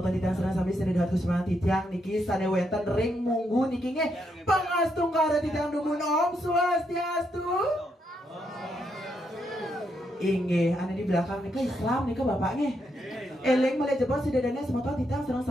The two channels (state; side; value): normal; both; correlation 0.79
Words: tadi serang sampai sededat kusman titiang niki sane wenten ring munggu niki nge pangastung kara titiang dumun Om Swastiastu. Inge ane di belakang nika Islam nika bapaknya. Eleng mulai jebol si dedane semua titiang serang